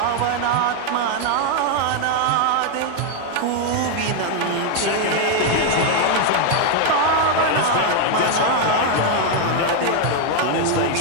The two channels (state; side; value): different; both; correlation 0.00